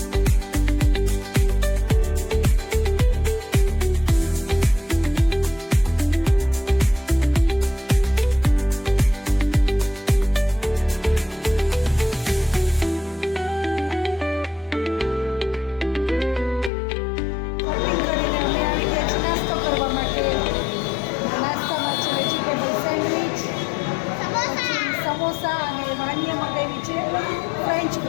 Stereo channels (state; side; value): drops out; right; at 16.7 s